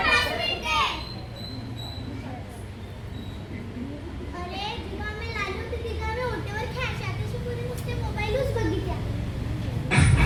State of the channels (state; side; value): identical; both; correlation 1.00